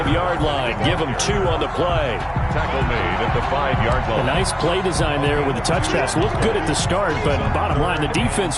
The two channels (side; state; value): both; identical; correlation 1.00